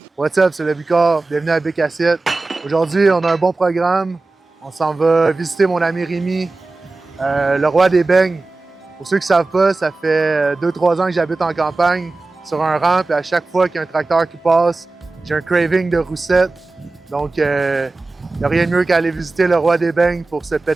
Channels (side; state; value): left; quieter; 3.4 dB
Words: What's up, c'est le Bicard. Bienvenue à Bic Assiette. Aujourd'hui, on a un bon programme. On s'en va visiter mon ami Rémi, le roi des beignes. Pour ceux qui ne savent pas, ça fait 2-3 ans que j'habite en campagne sur un rang, puis à chaque fois qu'il y a un tracteur qui passe, j'ai un craving de roussette. Donc, il n'y a rien de mieux qu'à aller visiter le roi des beignes pour se